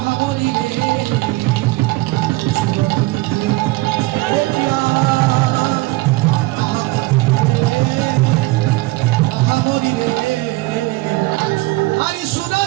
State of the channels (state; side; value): quieter; left; 20.6 dB